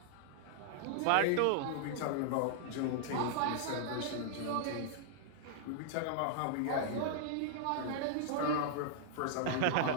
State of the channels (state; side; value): different; both; correlation -0.01